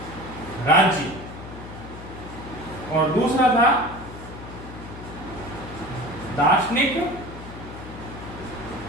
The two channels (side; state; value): left; noise; hum, 13 dB below the sound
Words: राज्य और दूसरा था दार्शनिक